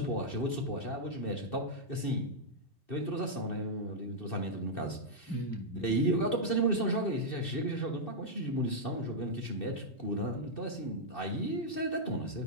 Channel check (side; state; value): right; late; 2.7 ms